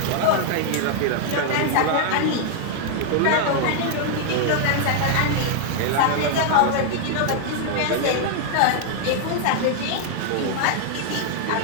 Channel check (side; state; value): both; different; correlation 0.00